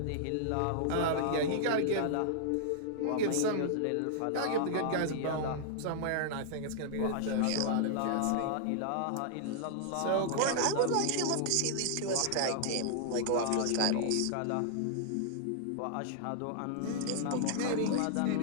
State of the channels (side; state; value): both; different; correlation -0.01